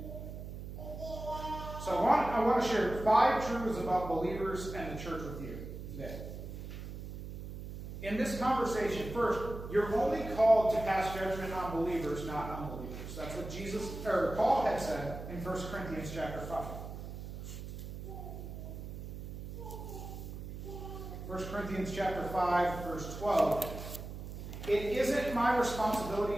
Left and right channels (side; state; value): right; noise; hum, 9 dB below the sound